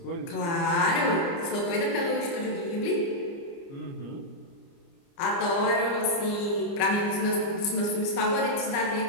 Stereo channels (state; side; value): late; right; 29 ms